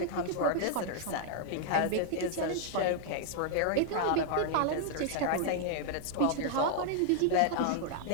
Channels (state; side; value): different; both; correlation 0.00